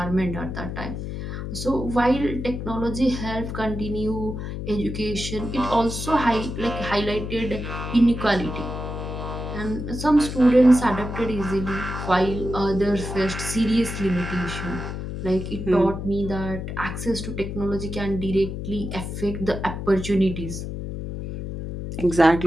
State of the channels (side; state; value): left; noise; hum, 6 dB below the sound